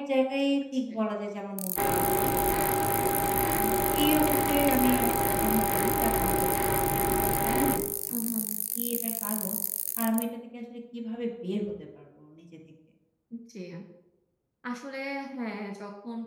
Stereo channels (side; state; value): both; identical; correlation 1.00